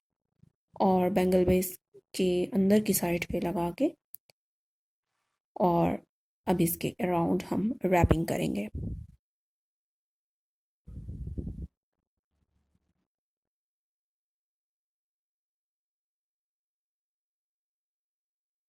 और बैंगल बेस के अंदर की साइड पे लगा के, और अब इसके अराउंड हम रैपिंग करेंगे।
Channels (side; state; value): both; identical; correlation 1.00